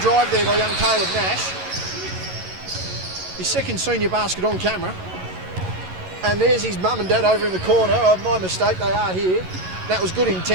drive there by young Caleb Nash. His second senior basket on camera. And there's his mum and dad over in the corner. Oh, my mistake, they are here. That was good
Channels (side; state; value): left; late; 11 ms